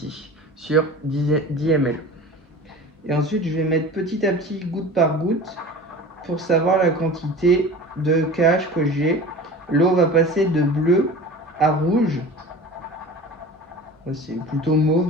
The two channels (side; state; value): both; normal; correlation 0.37